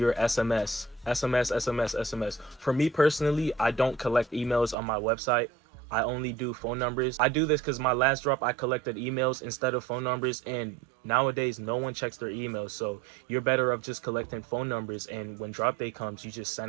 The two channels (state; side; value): drops out; left; at 4.8 s